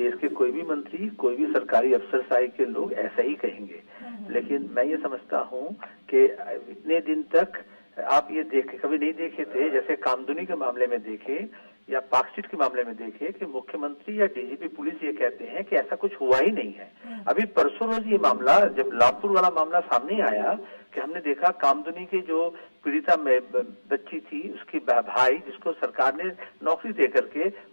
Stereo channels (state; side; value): inverted; both; correlation -1.00